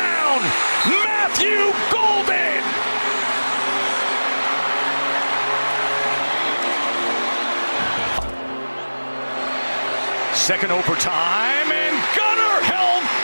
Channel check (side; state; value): both; inverted; correlation -1.00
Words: Matthew Golden. Second overtime, and Gunnar Helm